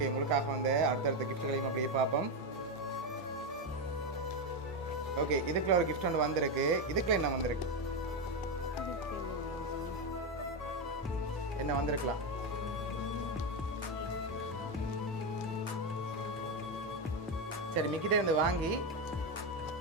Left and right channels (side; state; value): both; normal; correlation 0.09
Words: உங்களுக்காக வந்து அடுத்தடுத்த கிஃப்ட்களையும் அப்படியே பார்ப்போம். ஓகே இதுக்குள்ள ஒரு கிஃப்ட் ஒன்று வந்திருக்கு. இதுக்குள்ள என்ன வந்திருக்கு? என்ன வந்திருக்கலாம்? சரி மிக்கிட்டே இருந்து வாங்கி